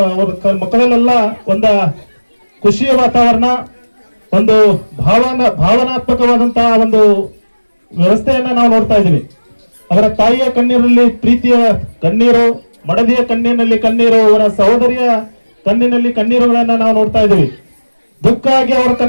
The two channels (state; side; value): inverted; both; correlation -1.00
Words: ಅವ್ರ ಮಕ್ಕಳಲ್ಲೆಲ್ಲ ಒಂದ ಖುಷಿಯ ವಾತಾವರಣ, ಒಂದು ಭಾವನಾತ್ಮಕವಾದಂತಹ ಒಂದು ವ್ಯವಸ್ಥೆಯನ್ನ ನಾವು ನೋಡ್ತಾ ಇದ್ದೀವಿ. ಅವರ ತಾಯಿಯ ಕಣ್ಣೀರಲ್ಲಿ ಪ್ರೀತಿಯ ಕಣ್ಣೀರು, ಮಡದಿಯ ಕಣ್ಣಿನಲ್ಲಿ ಕಣ್ಣೀರು, ಅವರ ಸಹೋದರಿಯ ಕಣ್ಣಿನಲ್ಲಿ ಕಣ್ಣೀರುಗಳನ್ನ ನಾವು ನೋಡ್ತಾ ಇದ್ದೀವಿ. ದುಃಖ ಆಗಿ ಅವರ